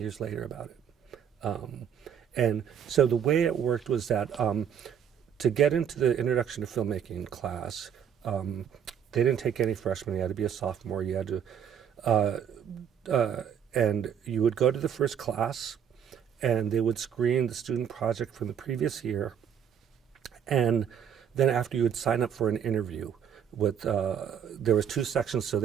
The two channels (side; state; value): left; quieter; 8.5 dB